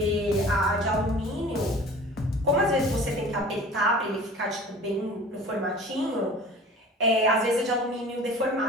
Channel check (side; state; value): both; normal; correlation 0.42